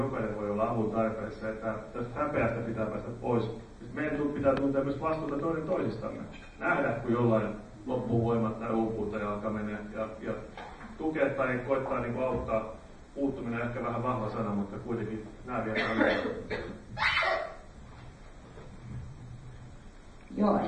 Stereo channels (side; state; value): both; identical; correlation 1.00